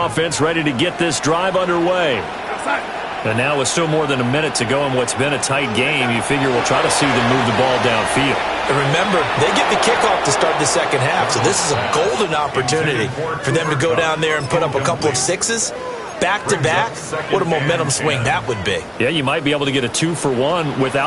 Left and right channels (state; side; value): identical; both; correlation 1.00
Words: offense ready to get this drive underway. And now with still more than a minute to go in what's been a tight game, you figure we'll try to see them move the ball downfield. And remember, they get the kickoff to start the second half, so this is a golden opportunity for them to go down there and put up a couple of sixes. Back-to-back, what a momentum swing that would be. Yeah, you might be able to get a 2-for-1